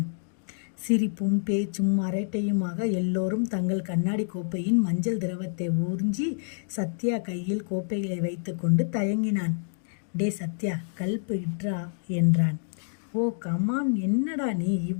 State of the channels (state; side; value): silent; right; digital silence